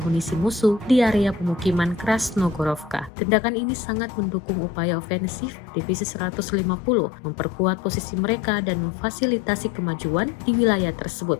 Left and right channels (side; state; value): right; drops out; at 3.1 s